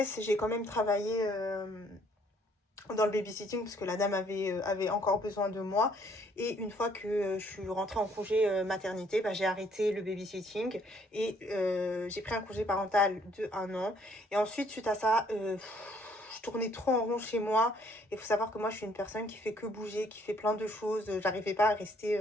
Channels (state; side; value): normal; both; correlation 0.64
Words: j'ai quand même travaillé... dans le babysitting parce que la dame avait encore besoin de moi. Et une fois que je suis rentrée en congé maternité, j'ai arrêté le babysitting et j'ai pris un congé parental de 1 an. Et ensuite, suite à ça, je tournais trop en rond chez moi. Il faut savoir que moi, je suis une personne qui fait que bouger, qui fait plein de choses. J'arrivais pas à rester...